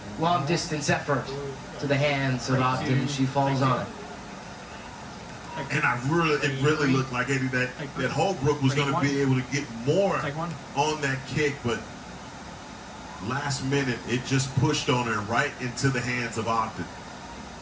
Long distance effort to the hands of Ogden. She falls on it. And it really looked like Eddie that Holbrook was going to be able to get more on that kick, but last minute it just pushed on her right into the hands of Ogden.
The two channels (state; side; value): identical; both; correlation 1.00